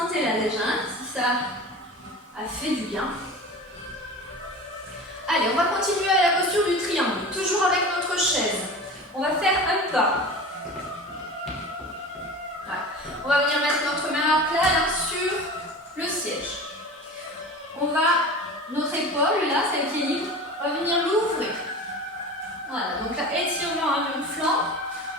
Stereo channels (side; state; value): both; normal; correlation 0.34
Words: déjà, si ça a fait du bien. Allez, on va continuer à la posture du triangle, toujours avec notre chaise. On va faire un pas. On va venir mettre notre main à plat là, sur le siège. Notre épaule, là, celle qui est libre, va venir l'ouvrir. Voilà, donc là, étirement à mon flanc.